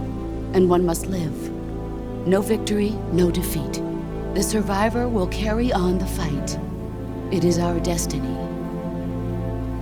and one must live. No victory, no defeat. The survivor will carry on the fight. It is our destiny.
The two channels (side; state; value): both; identical; correlation 1.00